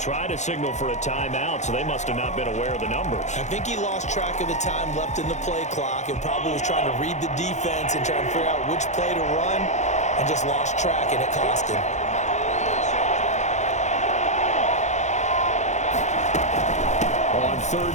to signal for a timeout, so they must have not been aware of the numbers. I think he lost track of the time left in the play clock and probably was trying to read the defense and trying to figure out which play to run and just lost track, and it cost him. On third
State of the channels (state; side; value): late; right; 0.34 ms